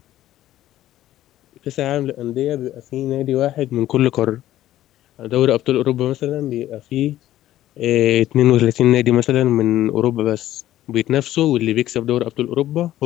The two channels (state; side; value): quieter; right; 13.7 dB